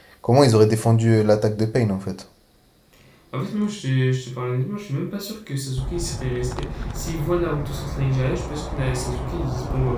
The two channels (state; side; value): identical; both; correlation 1.00